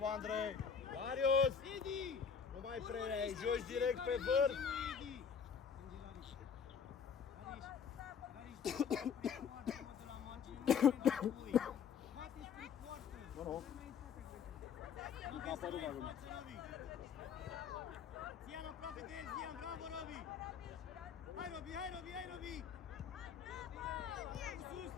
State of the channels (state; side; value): quieter; right; 6.8 dB